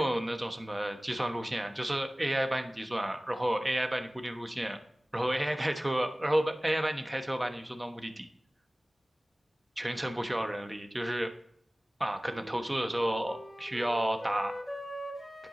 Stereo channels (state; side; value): normal; both; correlation 0.98